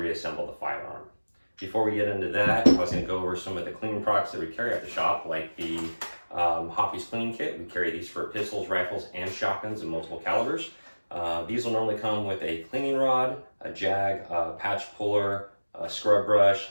the firearm. Before we get into that, I was going to go over some of the cleaning products that we carry at the shop, like the Hoppy's cleaning kit. We carry these for pistols, rifles, and shotguns in multiple calibers. These will normally come with a cleaning rod, a jag, a patch puller, a scrub brush,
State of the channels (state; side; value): inverted; both; correlation -1.00